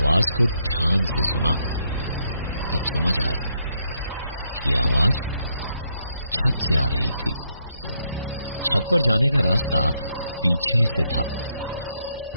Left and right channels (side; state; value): both; inverted; correlation -0.76